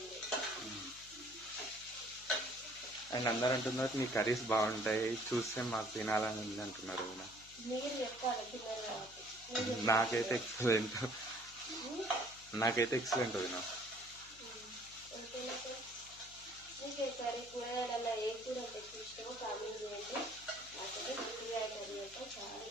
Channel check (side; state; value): left; noise; hum, 23 dB below the sound